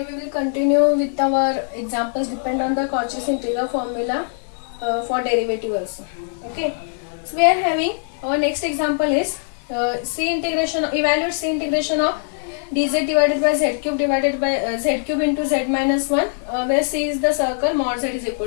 we will continue with our examples depend on the Cauchy's integral formula for derivative also. Okay. So we are having our next example is evaluate C integration of dz divided by z cube divided by z cube into z minus 1 where C is the circle mod z is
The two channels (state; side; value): silent; right; 65 dB below the other